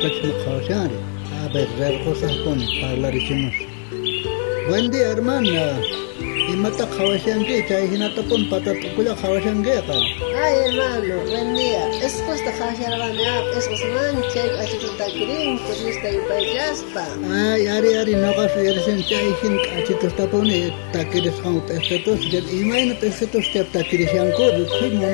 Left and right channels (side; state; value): right; silent; 65 dB below the other